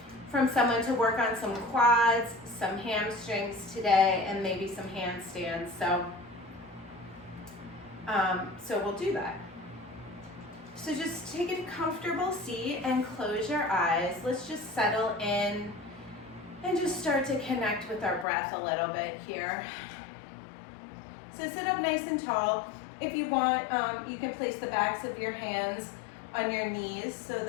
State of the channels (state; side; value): drops out; right; at 18.2 s